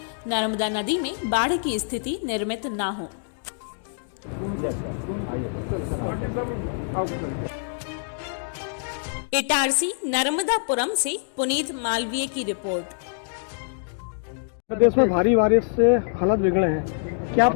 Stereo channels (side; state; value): right; silent; digital silence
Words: नर्मदा नदी में बाढ़ की स्थिति निर्मित न हो। इटारसी नर्मदापुरम से पुनीत मालवीय की रिपोर्ट। प्रदेश में भारी बारिश से हालत बिगड़े हैं, क्या